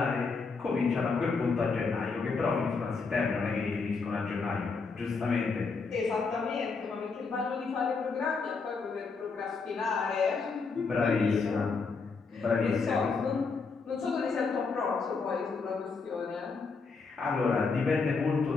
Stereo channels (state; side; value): quieter; right; 4.6 dB